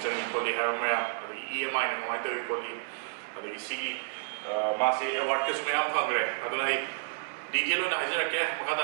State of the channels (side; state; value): left; silent; 57 dB below the other